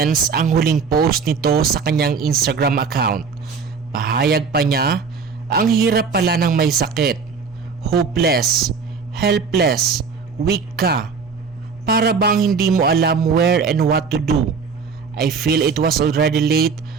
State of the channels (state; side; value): quieter; left; 5.3 dB